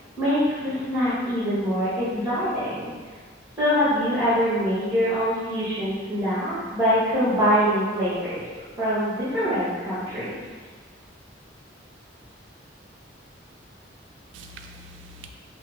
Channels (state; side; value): normal; both; correlation 0.37